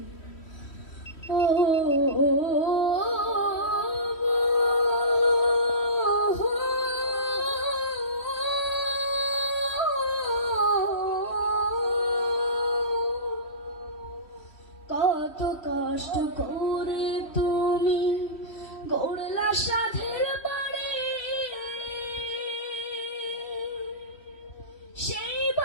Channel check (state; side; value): late; right; 3.1 ms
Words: ও কত কষ্ট করে তুমি গড়লা সাধের বাড়ি, সেই